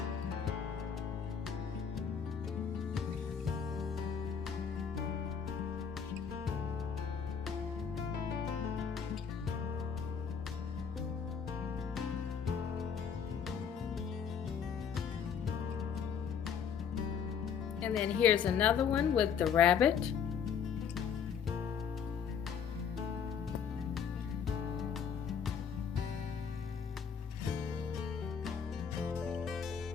And then here's another one with the rabbit.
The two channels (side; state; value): right; quieter; 7.1 dB